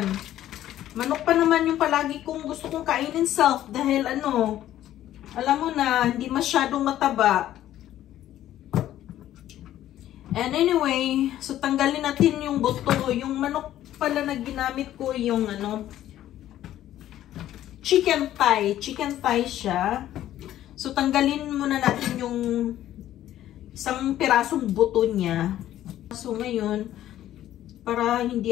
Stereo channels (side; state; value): right; quieter; 12.8 dB